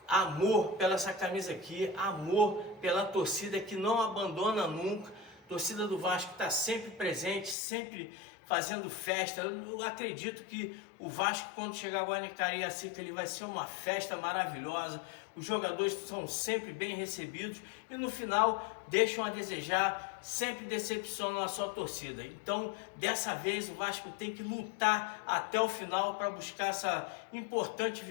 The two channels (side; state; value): right; drops out; at 7.6 s